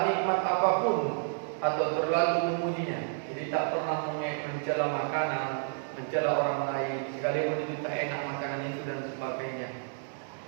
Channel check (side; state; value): left; silent; digital silence